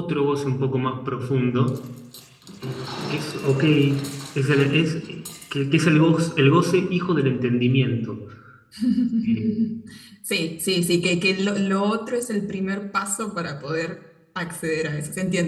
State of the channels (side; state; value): both; identical; correlation 1.00